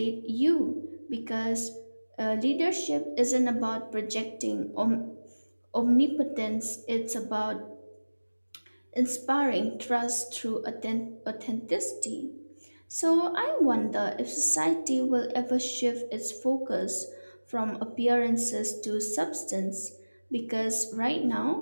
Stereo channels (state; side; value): inverted; both; correlation -1.00